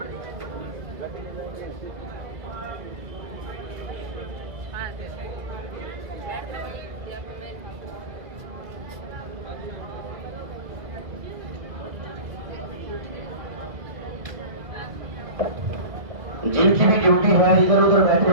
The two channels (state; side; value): late; left; 2.0 ms